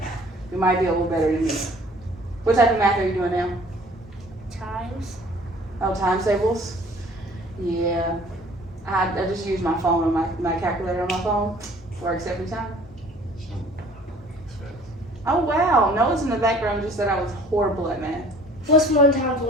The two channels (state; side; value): normal; both; correlation 0.52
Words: you might be a little better than me. What type of math are you doing now? Times. Oh, times tables? Yeah. I just use my phone on my calculator on my phone. Works every time. Oh wow, Noah's in the background just said I was horrible at math. What's 1 times